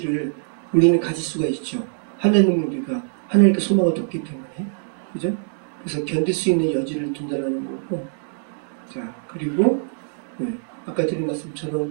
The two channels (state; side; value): silent; left; digital silence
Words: 우리는 가질 수가 있죠. 하나님께 소망을 뒀기 때문에. 그죠? 그래서 견딜 수 있는 여지를 둔다는 거고. 자, 그리고, 아까 드린